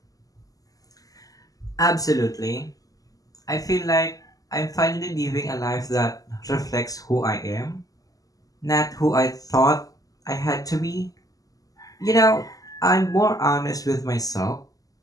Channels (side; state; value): right; late; 0.17 ms